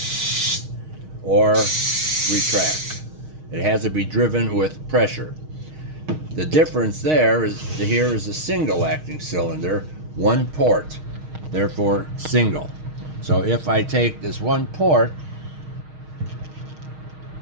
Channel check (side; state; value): left; late; 6.4 ms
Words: or retract, it has to be driven with pressure. The difference there is here is a single acting cylinder, 1 port, therefore single. So if I take this 1 port